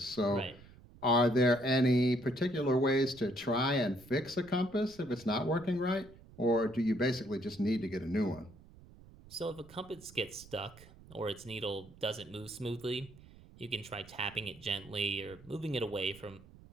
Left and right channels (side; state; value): right; noise; rumble, 21 dB below the sound